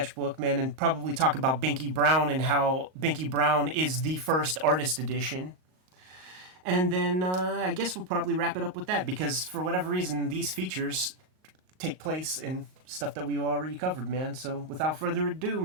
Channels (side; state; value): left; late; 38 ms